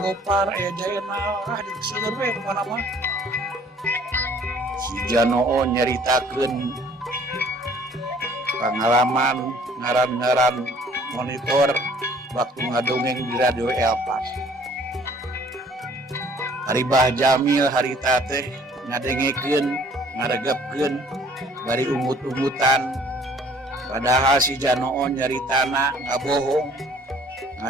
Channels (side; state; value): both; normal; correlation 0.56